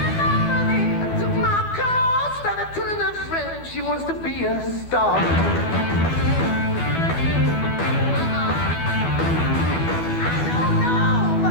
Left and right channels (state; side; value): late; right; 12 ms